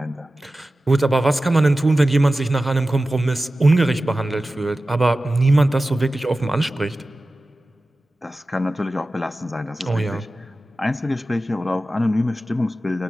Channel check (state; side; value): normal; both; correlation 0.95